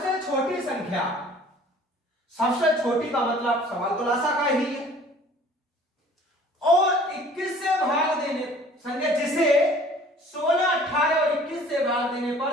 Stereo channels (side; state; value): both; normal; correlation 0.51